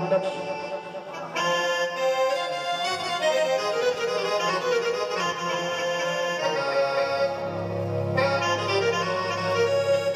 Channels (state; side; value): identical; both; correlation 1.00